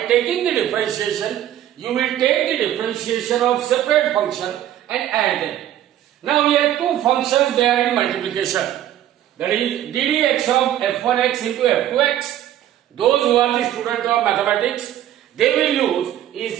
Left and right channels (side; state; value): left; quieter; 12.0 dB